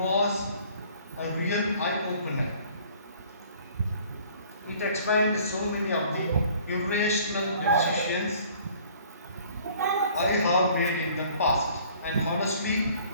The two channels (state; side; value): inverted; both; correlation -0.54